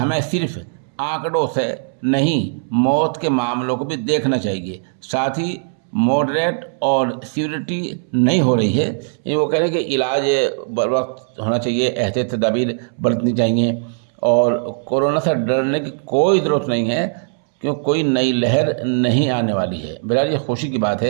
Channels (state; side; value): silent; left; 66 dB below the other